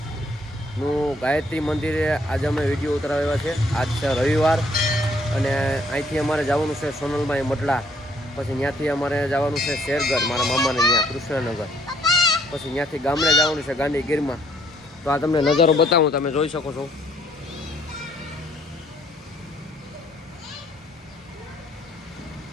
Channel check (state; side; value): normal; both; correlation 0.65